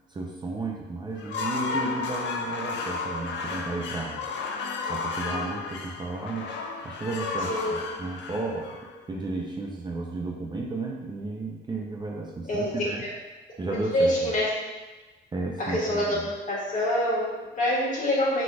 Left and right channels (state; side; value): normal; both; correlation 0.41